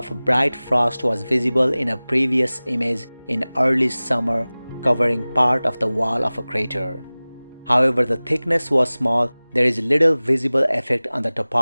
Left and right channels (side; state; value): both; inverted; correlation -0.99